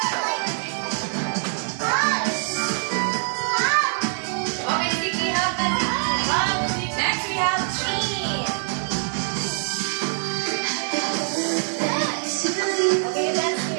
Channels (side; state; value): left; silent; digital silence